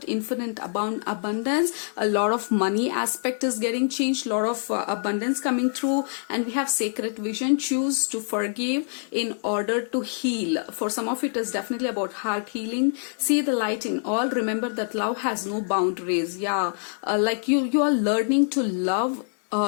infinite abundance. A lot of money aspect is getting changed, a lot of abundance coming through. And we have sacred vision, choose to forgive in order to heal. For some of you, it is definitely about heart healing. See the light in all. Remember that love has no boundaries. Yeah, like you are learning to love.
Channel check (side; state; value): right; silent; 59 dB below the other